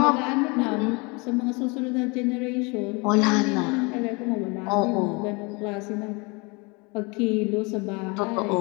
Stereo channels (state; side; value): quieter; right; 28.7 dB